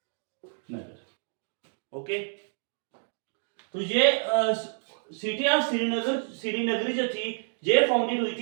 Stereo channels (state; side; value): silent; left; digital silence